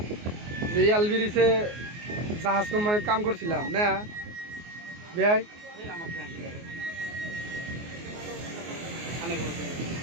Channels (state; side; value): late; left; 24 ms